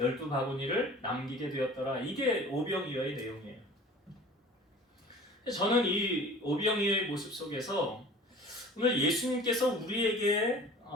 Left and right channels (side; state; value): both; normal; correlation 0.43